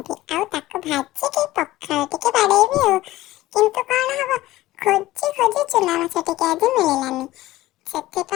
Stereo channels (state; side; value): quieter; right; 16.7 dB